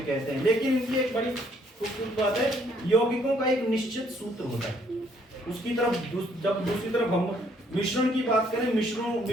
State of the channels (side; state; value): both; normal; correlation 0.66